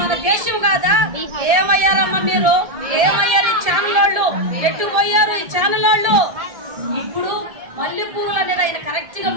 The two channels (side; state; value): left; late; 1.7 ms